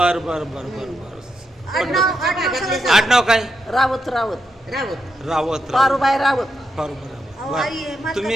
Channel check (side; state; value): both; normal; correlation 0.83